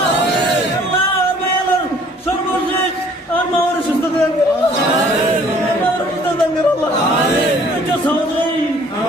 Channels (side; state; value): both; normal; correlation 0.56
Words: আল্লাহ আর সর্বশেষ আর মাওয়ার সুস্থ করে আল্লাহ